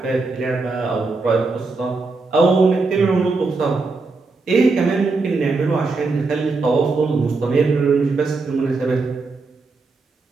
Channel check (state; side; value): quieter; left; 3.9 dB